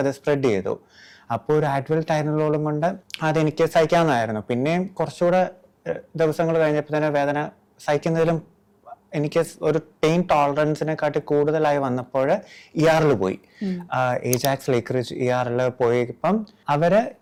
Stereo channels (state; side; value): identical; both; correlation 1.00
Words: അത് സ്പ്രെഡ് ചെയ്തു. അപ്പോൾ ഒരു ആഡ്വൽ ടൈമിലോളം കൊണ്ട് അതെനിക്ക് സഹിക്കാവുന്നതായിരുന്നു. പിന്നെയും കുറച്ചുകൂടെ ദിവസങ്ങൾ കഴിഞ്ഞപ്പോൾ തന്നെ വേദന സഹിക്കുന്നതിലും എനിക്ക് ഒരു പെയിൻ ടോളറൻസിനെക്കാട്ടി കൂടുതലായി വന്നപ്പോൾ ER പോയി. ഏജാക്സ് ലേക്ക്റിഡ്ജ് ER പോയപ്പം അവര്